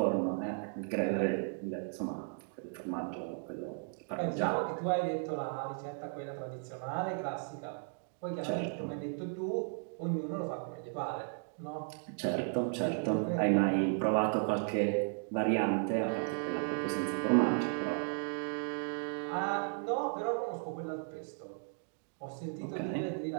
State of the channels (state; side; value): silent; left; 54 dB below the other